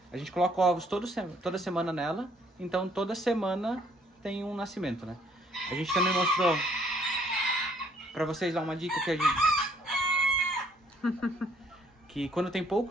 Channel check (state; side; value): normal; both; correlation 0.64